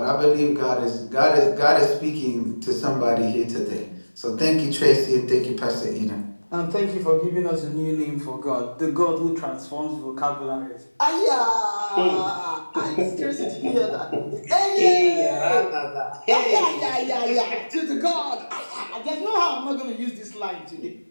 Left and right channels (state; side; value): inverted; both; correlation -1.00